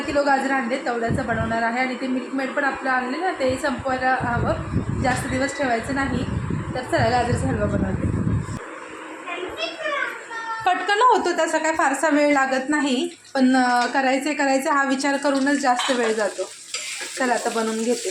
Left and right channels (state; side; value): identical; both; correlation 1.00